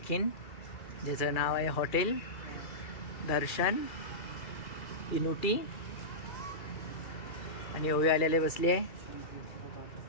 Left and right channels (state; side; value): late; right; 2.4 ms